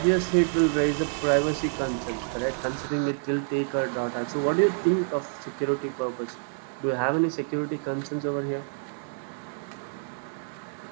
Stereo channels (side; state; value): left; silent; 60 dB below the other